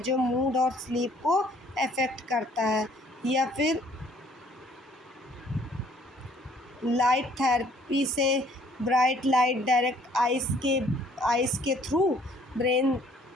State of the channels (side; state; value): both; normal; correlation 0.60